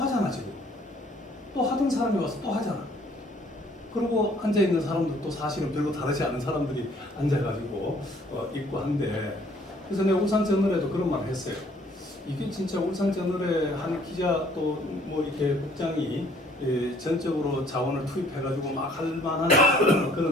하잖아 지금. 또 하던 사람이 와서 또 하잖아. 그리고 앉아 있는 사람들도 사실은 별로 다르지 않은 사람들이 앉아가지고 있고 한데 그래서 내가 울산저널에도 그런 말을 했어요. 이게 진짜 울산저널에 한 기자 또 뭐 이렇게 국장이 전적으로 자원을 투입해가지고 막 할 만한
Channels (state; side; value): normal; both; correlation 0.60